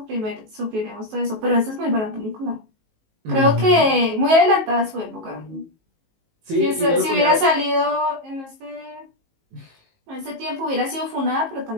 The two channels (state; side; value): late; left; 19 ms